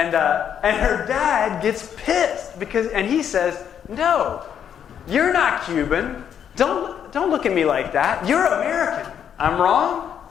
her dad gets pissed and he says, no, you're not Cuban. Don't look at me like that. You're American. I'm wrong?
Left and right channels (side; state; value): right; quieter; 8.7 dB